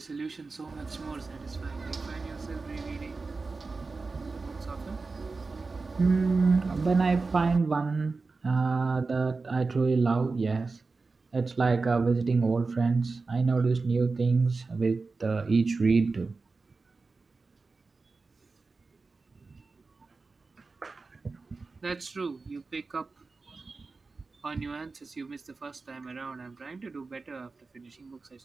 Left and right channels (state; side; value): quieter; left; 4.0 dB